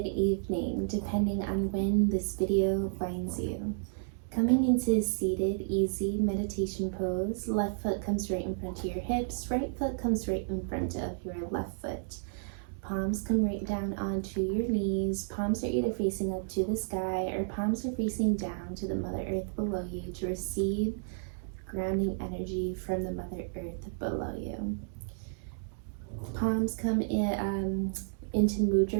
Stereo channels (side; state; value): left; silent; digital silence